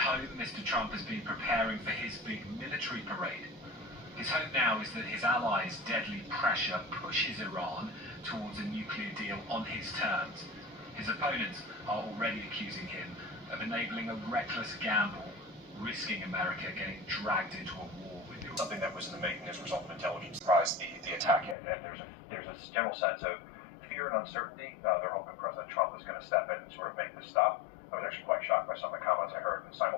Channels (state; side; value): drops out; right; at 21.6 s